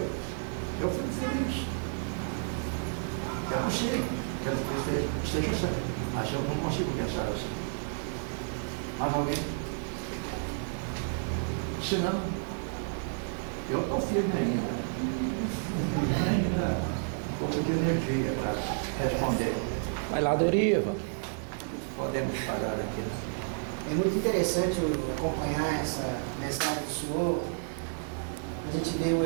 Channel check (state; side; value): silent; left; digital silence